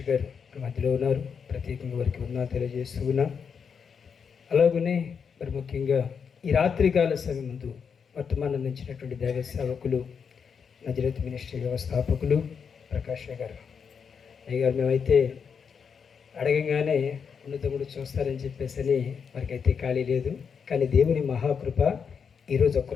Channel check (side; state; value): right; quieter; 6.5 dB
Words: గారు మన మధ్యలో ఉన్నారు. ప్రత్యేకంగా వారికి వందనాలు తెలియజేస్తున్నాం. అలాగనే మరి ముఖ్యంగా ఈ రాత్రికాల సమయం ముందు వర్తమానం అందించినటువంటి దైవ సేవకులు నజరేత్ మినిస్ట్రీ వ్యవస్థాపకులు ప్రకాష్ గారు. అయ్యగారు, మేమైతే అడగంగానే ఉన్నతముడు చూస్తారని చెప్పేసి వారికైతే ఖాళీ లేదు. కానీ దేవుని మహాకృప ఈరోజు